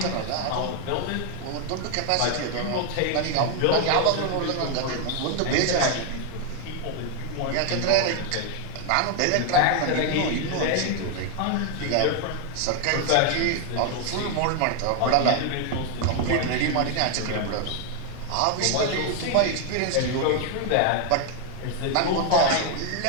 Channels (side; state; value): both; different; correlation 0.00